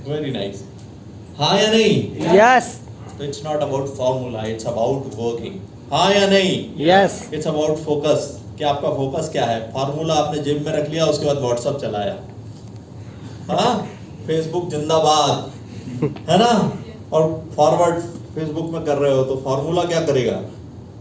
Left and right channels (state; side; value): identical; both; correlation 1.00